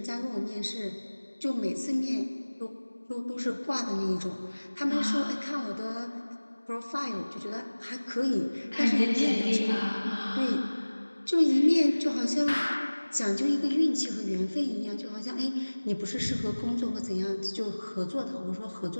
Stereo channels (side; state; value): both; inverted; correlation -1.00